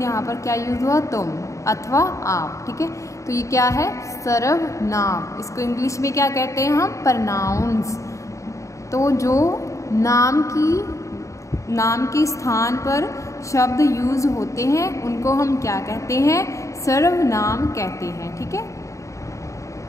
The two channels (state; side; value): late; right; 0.15 ms